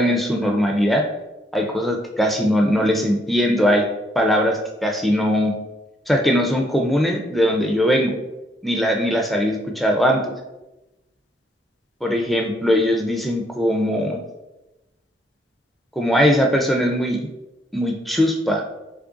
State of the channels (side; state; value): both; normal; correlation 0.70